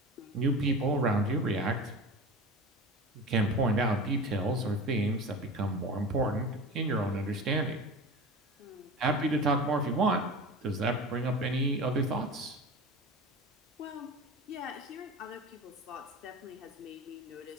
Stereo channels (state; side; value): normal; both; correlation 0.31